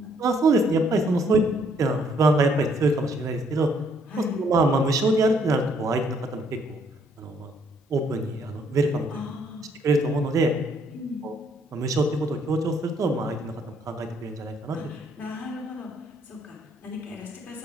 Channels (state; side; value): normal; both; correlation 0.67